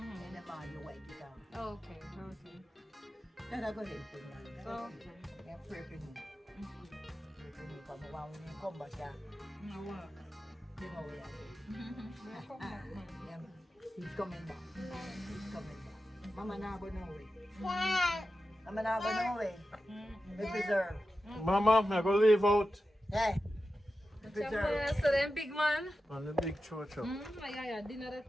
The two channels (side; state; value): both; normal; correlation 0.92